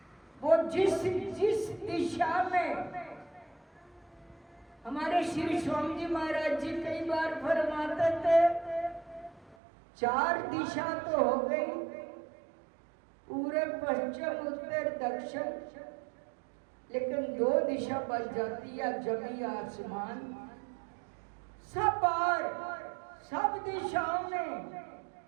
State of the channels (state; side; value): drops out; left; at 9.6 s